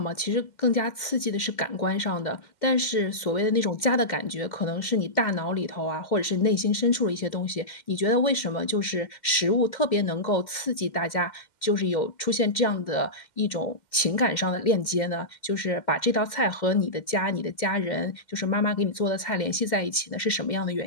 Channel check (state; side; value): late; right; 2.1 ms